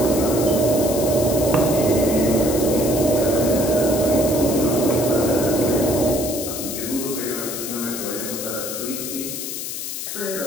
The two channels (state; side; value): noise; left; hiss, 6 dB below the sound